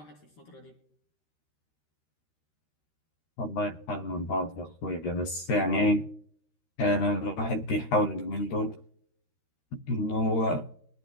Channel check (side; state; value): right; late; 13 ms